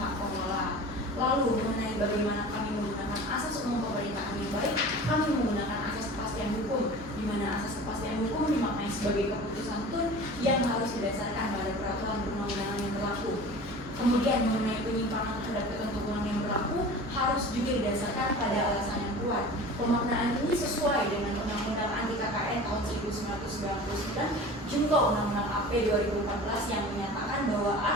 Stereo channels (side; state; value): both; normal; correlation 0.38